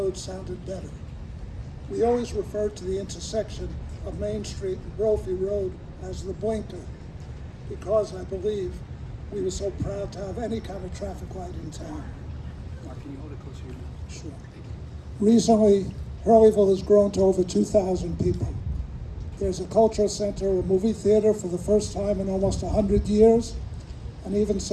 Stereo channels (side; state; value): both; identical; correlation 1.00